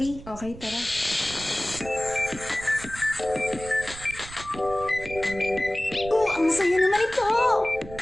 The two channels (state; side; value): noise; right; rumble, 14 dB below the sound